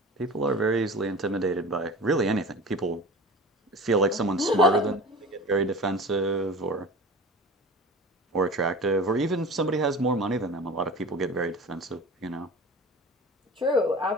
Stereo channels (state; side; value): normal; both; correlation 0.36